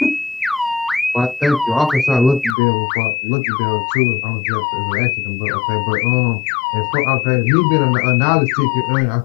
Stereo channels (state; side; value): drops out; right; at 2.6 s